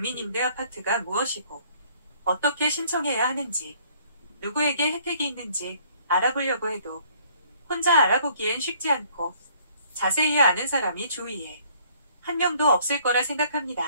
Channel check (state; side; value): inverted; both; correlation -0.60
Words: 무엇이고 어떻게 신청해야 하는지, 누구에게 혜택이 있는지 알아보려고 해도 혼자 알아보기엔 쉽지 않고 자세히 아는 사람이 주위에 한 명도 없을 거라